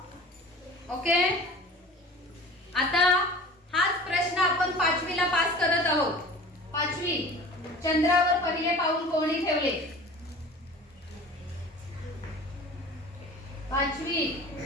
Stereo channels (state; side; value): normal; both; correlation 0.41